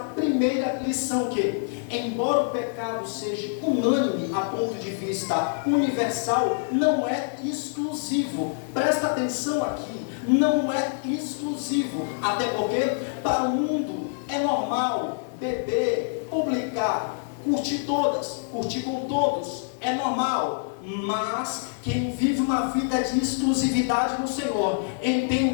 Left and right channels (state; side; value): silent; right; digital silence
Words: primeira lição, que embora o pecado seja unânime a ponto de vista universal, não é exclusivo. Presta atenção aqui, não é exclusivo. Até porque para o mundo é normal beber, publicar, curtir com todos, é normal. Mas quem vive uma vida de exclusividade no Senhor